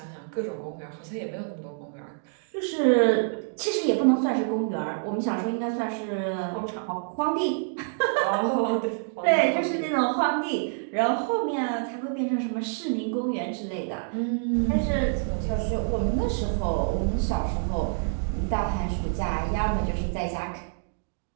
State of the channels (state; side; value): silent; left; digital silence